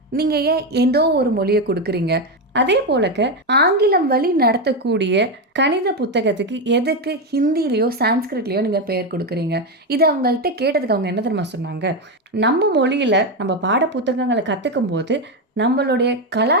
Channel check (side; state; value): both; normal; correlation 0.10